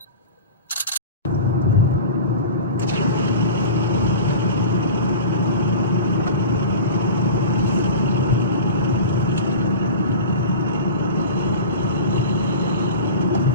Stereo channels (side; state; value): both; inverted; correlation -0.34